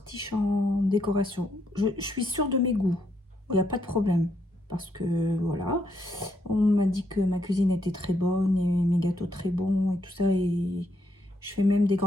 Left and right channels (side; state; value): both; normal; correlation 0.76